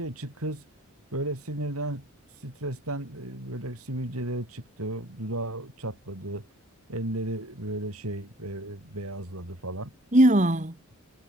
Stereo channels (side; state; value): both; normal; correlation 0.54